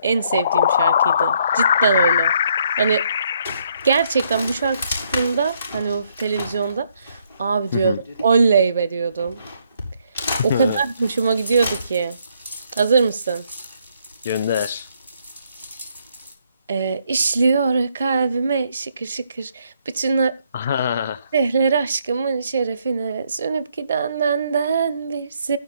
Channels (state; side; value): inverted; both; correlation -0.71